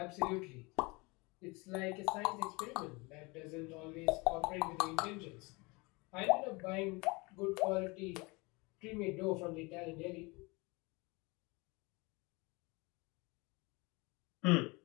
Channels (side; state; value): right; quieter; 26.3 dB